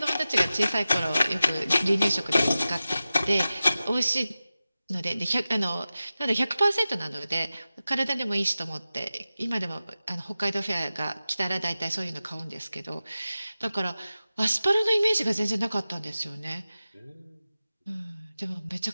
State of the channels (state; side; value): inverted; both; correlation -0.95